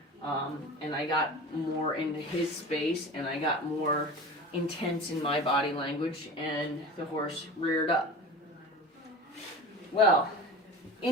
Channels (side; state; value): both; normal; correlation 0.34